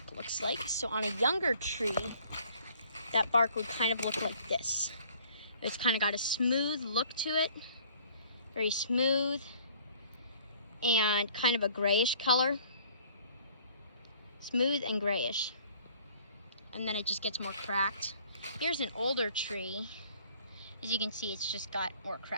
looks like. So on a younger tree, that bark would kind of look like this. It's kind of got a smooth look to it, very smooth, and kind of a grayish color. Smooth and grayish. And then it just gets more cracked. Here's an older tree. As you can see, it's just got more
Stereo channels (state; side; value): inverted; both; correlation -0.56